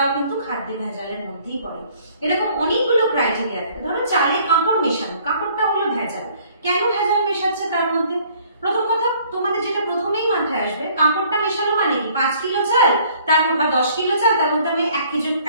কিন্তু খাদ্যে ভেজালের মধ্যেই পড়ে। এরকম অনেকগুলো ক্রাইটেরিয়া থাকে। ধরো চালে কাঁকড় মেশানো, কাঁকড়টা হলো ভেজাল। কেন ভেজাল মেশাচ্ছে তার মধ্যে? প্রথম কথা তোমাদের যেটা প্রথমেই মাথায় আসবে, কাঁকড়টা মেশানো মানে কি? 5 কিলো চাল তার বা 10 কিলো চাল, তার মধ্যে আমি 1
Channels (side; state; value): both; inverted; correlation -0.58